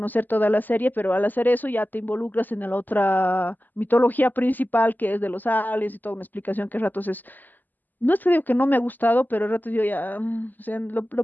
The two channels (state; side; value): late; right; 0.086 ms